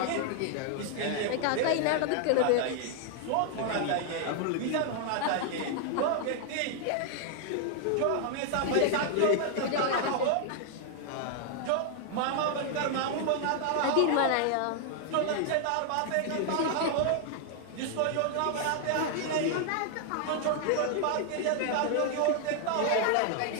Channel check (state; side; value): different; both; correlation 0.00